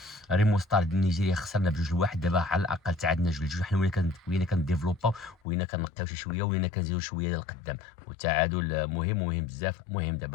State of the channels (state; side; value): drops out; right; at 5.4 s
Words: ريمو ستار ديال نيجيريا خسرنا ب2-1، دابا على الاقل تعادلنا 2-2. حنا ولينا كنديفلوباو، ولينا كنقيو شي شويه، ولينا كنزيدو شويه للقدام، والتعادل مهم بزاف. المهم